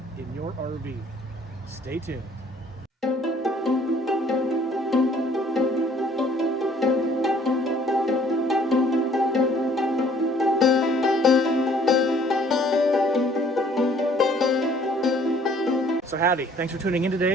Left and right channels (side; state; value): both; normal; correlation 0.58